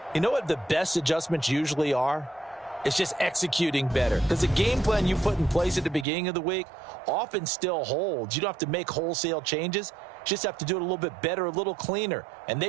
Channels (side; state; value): left; drops out; at 6.1 s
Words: You know what the best adjustments usually are? It's just executing better. Because the game plan you put in place at the beginning of the week often still holds. You don't have to make wholesale changes. You just have to do it a little bit better, a little cleaner. And